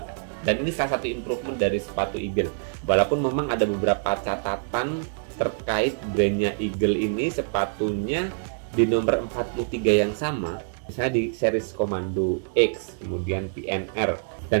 Dan ini salah satu improvement dari sepatu Eagle. Walaupun memang ada beberapa catatan terkait brandnya Eagle ini, sepatunya di nomor 43 yang sama, misalnya di series Commando X, kemudian PNR,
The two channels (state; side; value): silent; left; digital silence